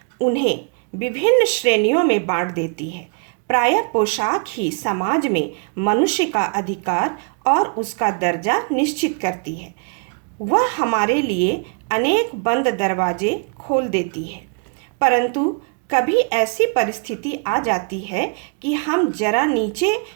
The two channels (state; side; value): quieter; left; 38.7 dB